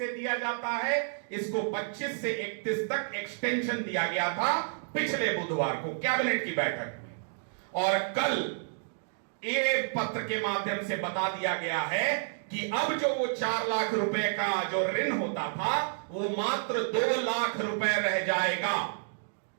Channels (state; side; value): silent; left; digital silence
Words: दिया जाता है, इसको 25 से 31 तक एक्सटेंशन दिया गया था पिछले बुधवार को कैबिनेट की बैठक में। और कल ये पत्र के माध्यम से बता दिया गया है कि अब जो वो 4 लाख रुपए का जो ऋण होता था, वो मात्र 2 लाख रुपए रह जाएगा।